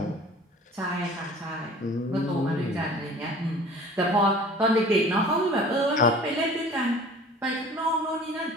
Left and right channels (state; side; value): normal; both; correlation 0.45